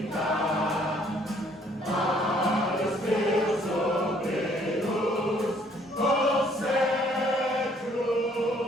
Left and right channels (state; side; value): normal; both; correlation 0.62